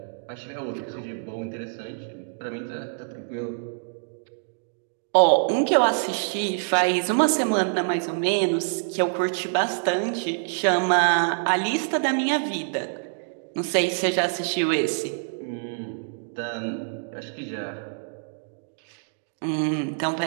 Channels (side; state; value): left; silent; digital silence